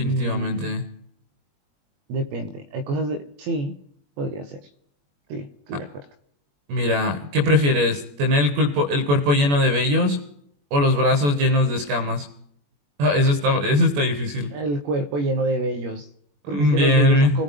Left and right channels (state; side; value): late; left; 21 ms